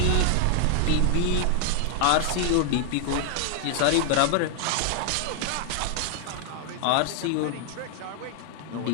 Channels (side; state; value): both; different; correlation 0.00